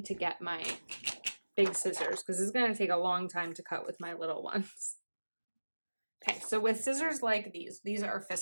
to get my big scissors because it's going to take a long time to cut with my little ones. Okay, so with scissors like these are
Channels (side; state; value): both; inverted; correlation -1.00